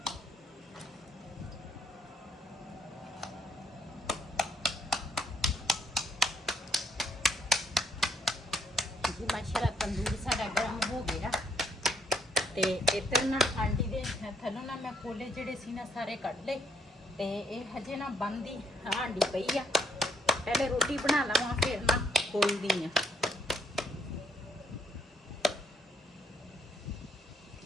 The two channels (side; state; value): both; normal; correlation 0.69